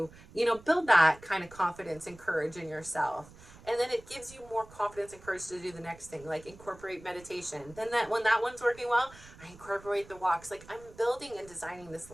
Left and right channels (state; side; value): noise; right; rumble, 21 dB below the sound